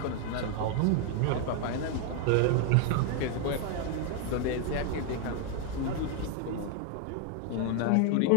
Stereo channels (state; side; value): different; both; correlation 0.01